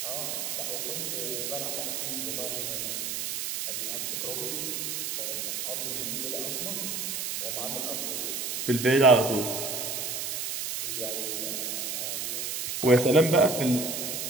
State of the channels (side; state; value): right; noise; hiss, 2 dB below the sound